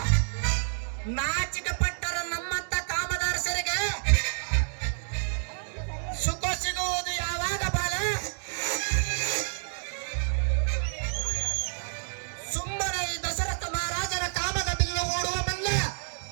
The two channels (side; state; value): left; silent; digital silence